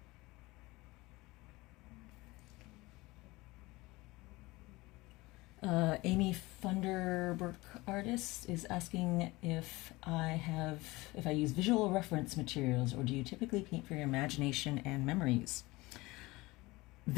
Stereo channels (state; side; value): quieter; right; 21.4 dB